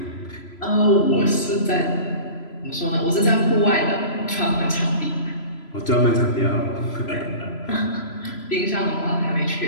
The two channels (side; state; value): right; late; 3.0 ms